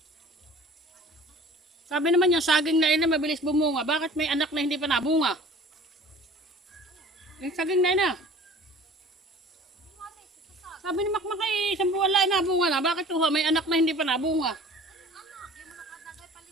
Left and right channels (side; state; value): both; normal; correlation 0.46